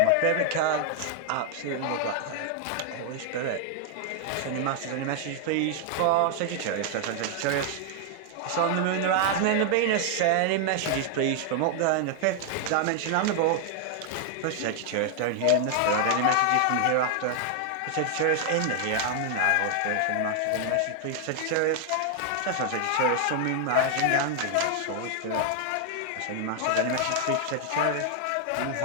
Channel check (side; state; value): both; different; correlation 0.00